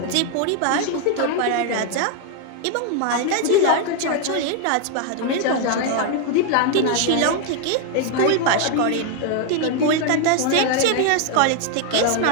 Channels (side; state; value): both; different; correlation 0.00